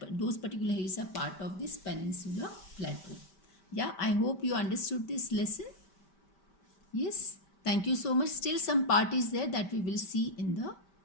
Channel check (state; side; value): late; right; 5.1 ms